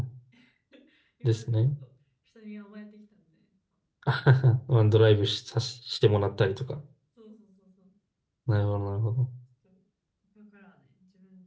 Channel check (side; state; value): both; identical; correlation 1.00